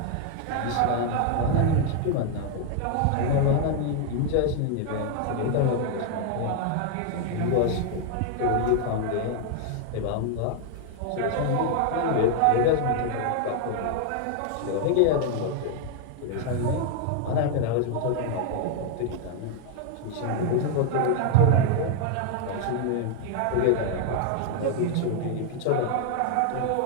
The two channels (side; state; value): both; different; correlation 0.00